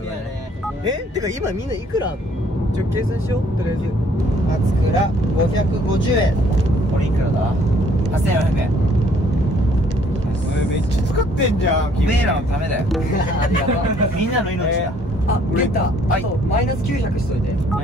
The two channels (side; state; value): both; normal; correlation 0.61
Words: がね。てか今みんないくらあんの？ちょ計算しようとりあえず。松倉550円。これいくらだ？8400円。めっちゃ使ってんじゃん。おめえらのためだよ。ありがとう。みんなの命だ。あ、ゲッタ。はいあとマイナス900しといて。マ